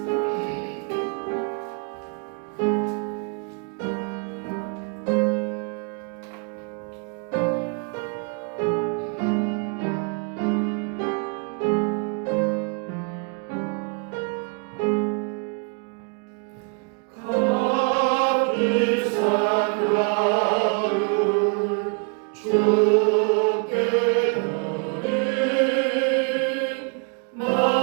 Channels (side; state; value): left; quieter; 36.2 dB